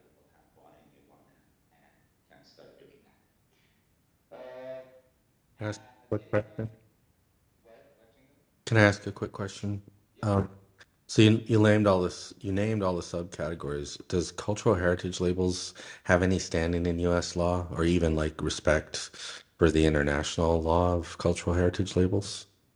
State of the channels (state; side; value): identical; both; correlation 1.00